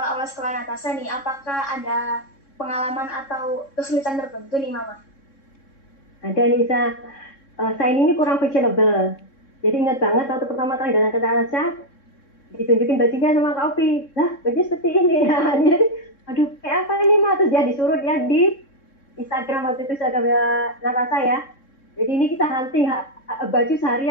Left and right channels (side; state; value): right; late; 3.6 ms